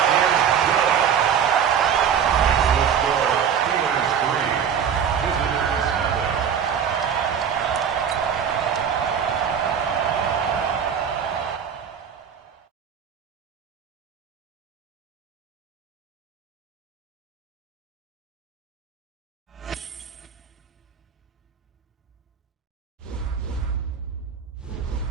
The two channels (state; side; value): quieter; left; 7.8 dB